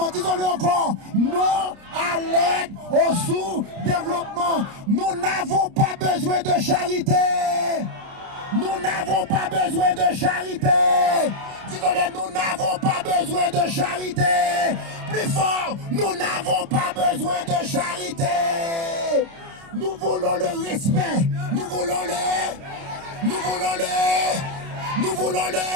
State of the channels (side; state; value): left; late; 30 ms